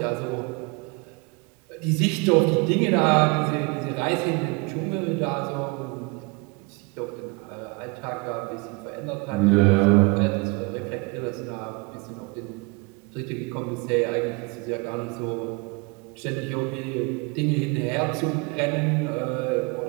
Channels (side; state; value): left; quieter; 28.9 dB